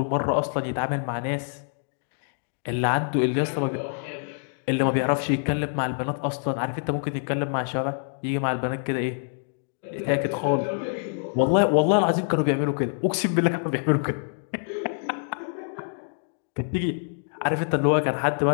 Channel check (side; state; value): right; silent; 61 dB below the other